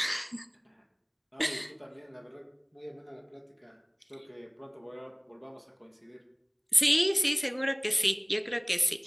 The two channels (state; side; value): identical; both; correlation 1.00